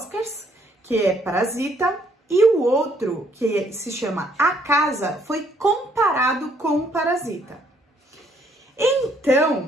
que é Parasita, e o outro, que se chama A Casa, foi comparado com Parasita.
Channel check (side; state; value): both; normal; correlation 0.67